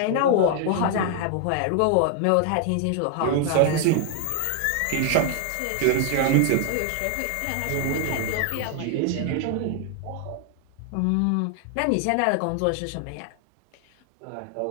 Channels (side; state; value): both; different; correlation 0.00